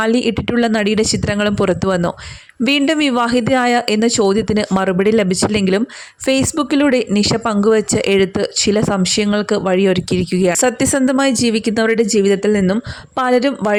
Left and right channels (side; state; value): both; identical; correlation 1.00